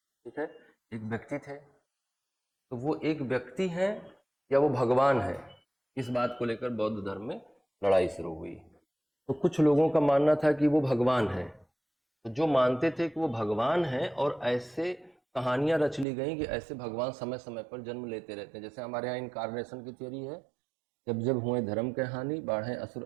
है, एक व्यक्ति थे। तो वो एक व्यक्ति है या वो भगवान है, इस बात को लेकर बौद्ध धर्म में लड़ाई शुरू हुई। तो कुछ लोगों का मानना था कि वो भगवान है। तो जो मानते थे कि वो भगवान है, और ऐसे कहानियां रच ली गई कि ऐसे भगवान समय समय पर जन्म लेते रहते हैं। जैसे हमारे यहाँ इनकारनेशन की थियरी है, जब जब हुए धर्म के हानि, बाढ़े असुर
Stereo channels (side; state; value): left; drops out; at 16.1 s